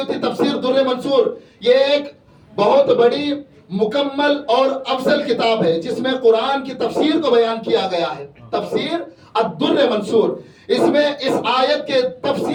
تفسیر در منصور یہ ایک بہت بڑی مکمل اور افضل کتاب ہے جس میں قرآن کی تفسیر کو بیان کیا گیا ہے. تفسیر الدر منصور، اس میں اس آیت کے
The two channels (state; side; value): identical; both; correlation 1.00